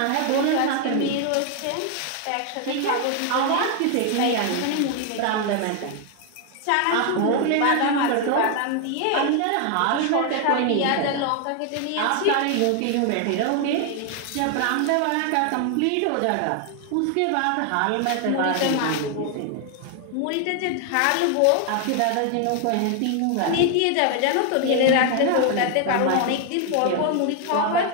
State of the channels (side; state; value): both; different; correlation 0.00